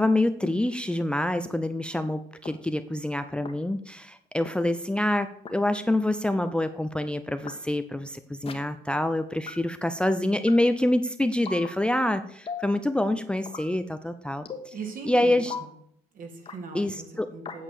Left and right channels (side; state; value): both; normal; correlation 0.92